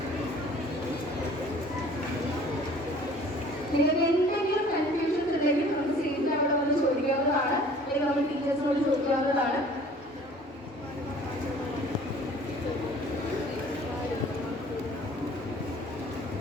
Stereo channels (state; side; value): normal; both; correlation 0.50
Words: നിങ്ങൾക്ക് എന്തെങ്കിലും കൺഫ്യൂഷൻസ് ഉണ്ടെങ്കിൽ നമുക്ക് സീറ്റിൽ അവിടെ വന്ന് ചോദിക്കാവുന്നതാണ്, അല്ലെങ്കിൽ നമ്മൾ ടീച്ചേഴ്സിനോട് ചോദിക്കാവുന്നതാണ്.